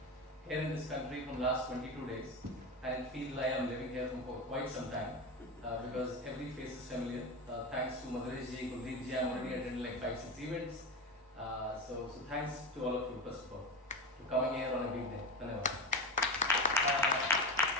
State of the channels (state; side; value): normal; both; correlation 0.20